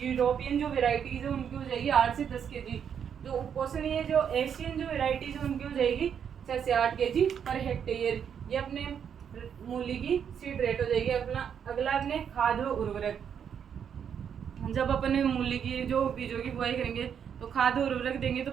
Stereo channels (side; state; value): left; quieter; 7.9 dB